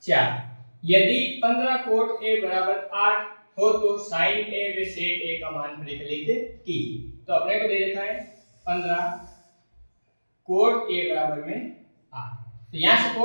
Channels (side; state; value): both; inverted; correlation -1.00